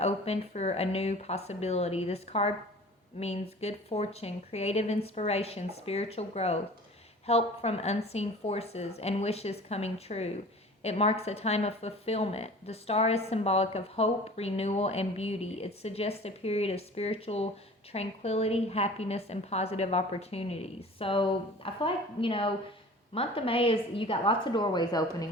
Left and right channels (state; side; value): normal; both; correlation 0.43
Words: opened for a new possibility. This card means good fortune, creative inspiration, spiritual growth, help from unseen forces, and wishes coming true. It marks a time of fulfillment. The star is symbolic of hope, renewal, and beauty. It suggests a period of spiritual tranquility, happiness, and positive opportunities. So I feel like, month of May is, you got lots of doorways